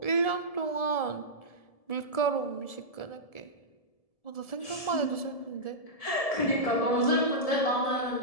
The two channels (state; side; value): late; right; 1.7 ms